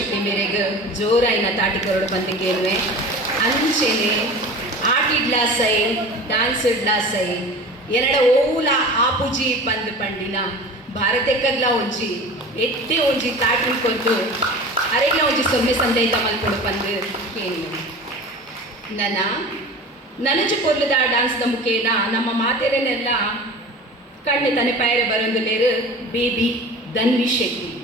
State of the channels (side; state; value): both; normal; correlation 0.37